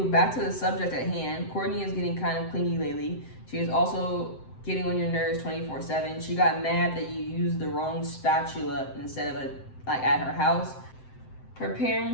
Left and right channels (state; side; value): late; right; 7.7 ms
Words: back to the subject at hand. Courtney is getting kind of clingy lately. She is also getting on your nerves 24/7. She got mad that you used the wrong spatula instead of at her house. Her